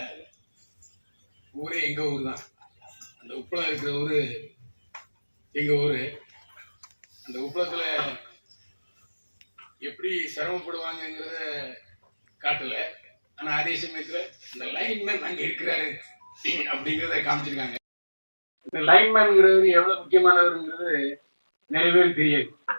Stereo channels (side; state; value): both; inverted; correlation -1.00